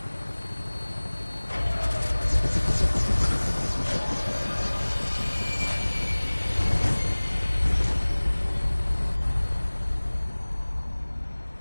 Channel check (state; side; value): inverted; both; correlation -1.00